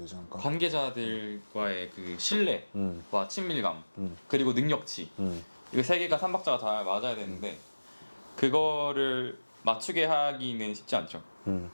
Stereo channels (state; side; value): inverted; both; correlation -1.00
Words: 않을까? 관계자들과의 그 신뢰와 친밀감 그리고 능력치 이거 세 개가 삼박자가 잘 맞아야 되는데 그거를 맞추게 하기는 쉽지 않죠.